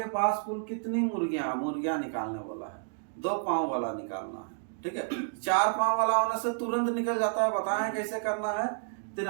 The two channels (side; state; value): left; silent; digital silence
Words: पास कुल कितनी मुर्गियां निकालने वाला है, 2 पांव वाला निकालना है, ठीक है। 4 पांव वाला होने से तुरंत निकल जाता है, बताएं कैसे करना है।